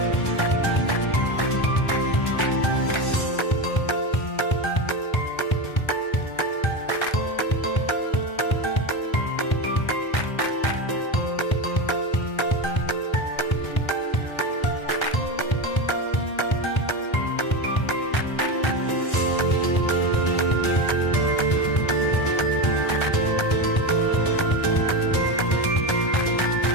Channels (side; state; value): right; late; 1.3 ms